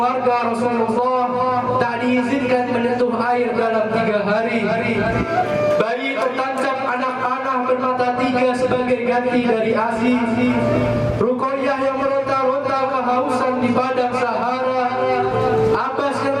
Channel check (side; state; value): both; identical; correlation 1.00